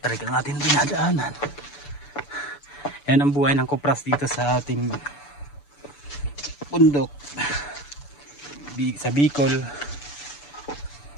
tarik ang ating dinadaanan. Yan ang buhay ng kupras dito sa ating bundok sa Bicol.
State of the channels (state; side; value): late; right; 6.9 ms